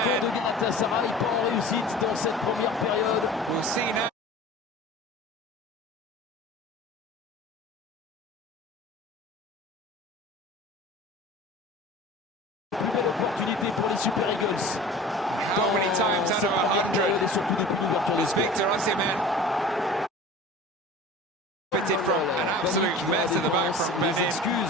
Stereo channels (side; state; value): both; normal; correlation 0.39